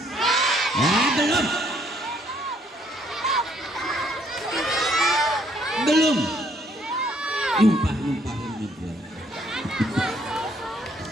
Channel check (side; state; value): both; normal; correlation 0.67